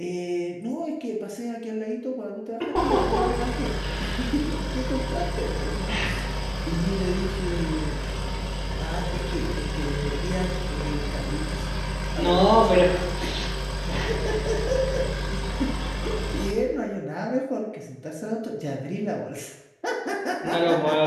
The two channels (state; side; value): identical; both; correlation 1.00